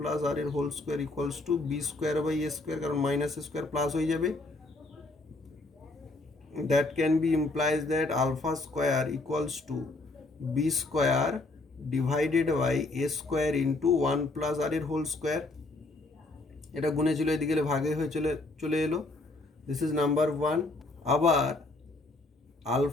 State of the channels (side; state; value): right; quieter; 3.0 dB